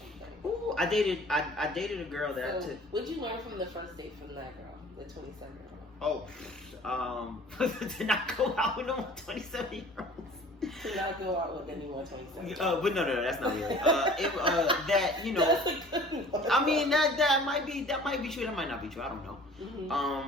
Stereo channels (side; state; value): both; normal; correlation 0.47